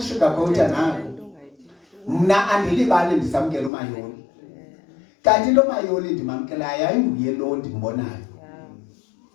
nako. Mna andilibali ndisamkela uMayoli. Kanti lo Mayoli ndimamkelayo ayinguye lo ndimbonayo.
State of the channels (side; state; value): right; drops out; at 3.7 s